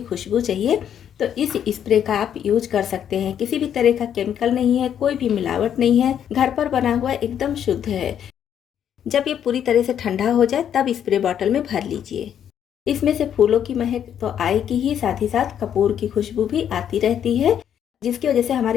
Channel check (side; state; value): right; quieter; 9.3 dB